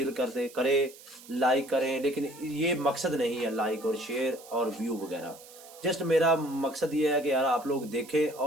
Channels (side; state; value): right; noise; hiss, 20 dB below the sound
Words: करते करे लाइक करें, लेकिन ये मकसद नहीं है लाइक और शेयर और व्यू वगैरह। जस्ट मेरा मकसद ये है कि यार आप लोग देखें